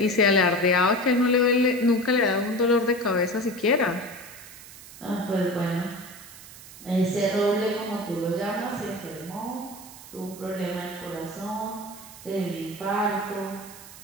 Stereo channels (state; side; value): noise; right; hiss, 17 dB below the sound